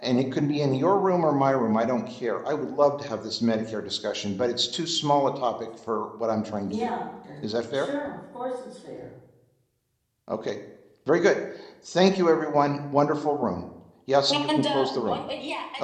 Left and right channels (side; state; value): both; identical; correlation 1.00